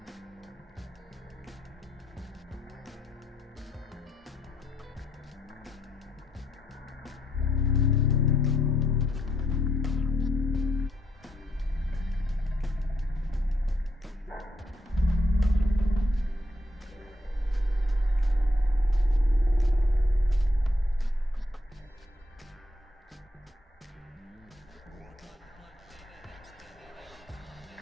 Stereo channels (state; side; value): normal; both; correlation 0.74